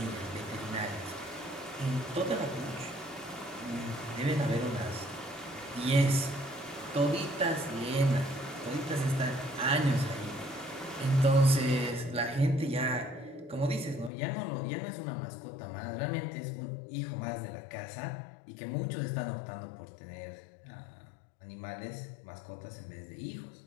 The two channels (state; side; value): drops out; right; at 14.1 s